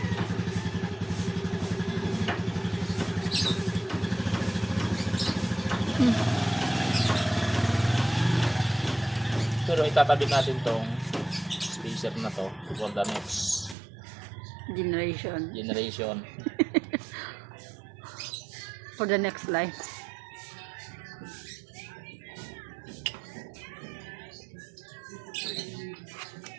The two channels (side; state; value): left; drops out; at 13.8 s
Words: Pero itatabi natin tong spacer na to for the next generation. For the next life.